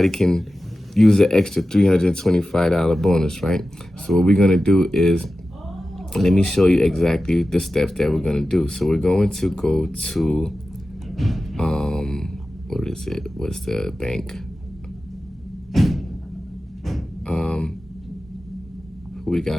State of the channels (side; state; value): both; normal; correlation 0.94